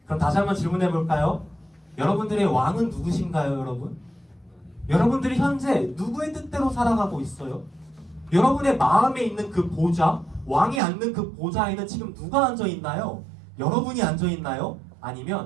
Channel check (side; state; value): left; drops out; at 10.8 s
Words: 그럼 다시 한번 질문해 볼까요? 여러분들의 왕은 누구신가요, 여러분? 여러분들이 현재 누구의 뜻대로 살아가고 있어요? 여러분의 마음에 있는 그 보좌, 왕이 앉는 그 보좌에는 지금 누가 앉아 있나요? 여러분이 앉아 있나요?